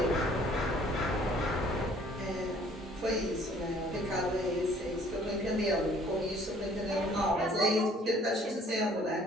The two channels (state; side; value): normal; both; correlation 0.57